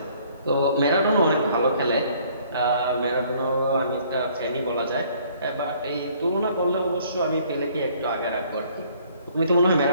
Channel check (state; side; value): inverted; both; correlation -0.60